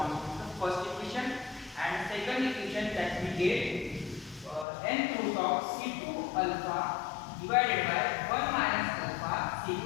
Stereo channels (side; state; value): right; drops out; at 4.7 s